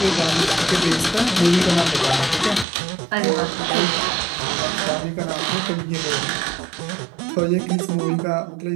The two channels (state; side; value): drops out; left; at 2.7 s